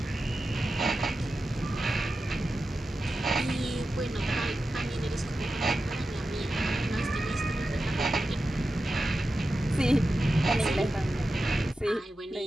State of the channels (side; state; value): both; normal; correlation 0.92